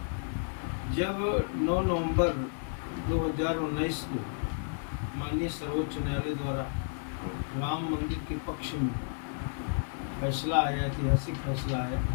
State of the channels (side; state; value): right; silent; 57 dB below the other